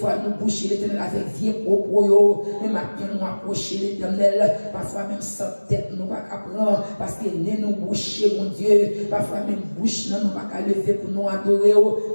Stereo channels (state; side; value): inverted; both; correlation -1.00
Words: nous boucher, l'éternel avec vie propre, mais maintenant, nous approcher l'éternel, parfois même sans tête, nous pas prendre, parce que nous boucher, mon Dieu, parfois même bouche, nous pas lever pour nous adorer,